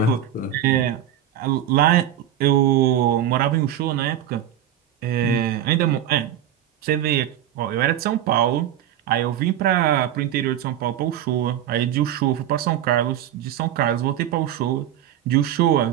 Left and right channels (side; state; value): left; quieter; 10.9 dB